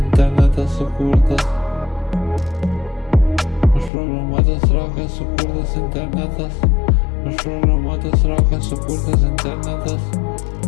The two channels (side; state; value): right; drops out; at 3.9 s